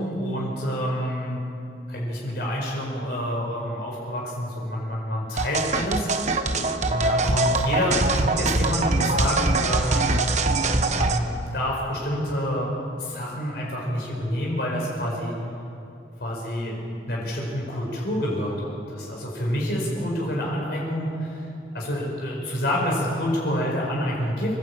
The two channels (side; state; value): both; normal; correlation 0.46